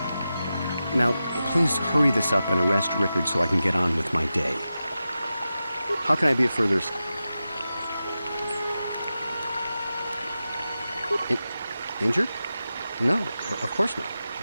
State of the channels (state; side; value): inverted; both; correlation -0.92